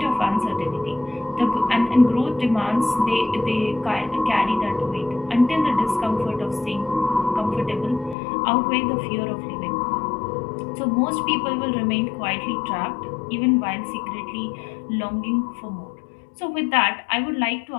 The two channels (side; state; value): right; drops out; at 8.2 s